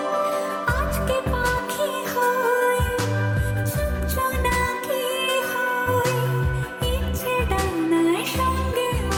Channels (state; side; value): identical; both; correlation 1.00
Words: আজকে পাখি হই, চুপ জোনাকি হই, ইচ্ছে ডানায় সঙ্গে